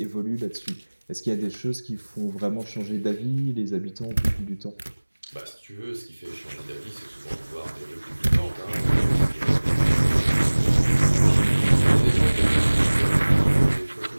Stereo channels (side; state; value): both; inverted; correlation -1.00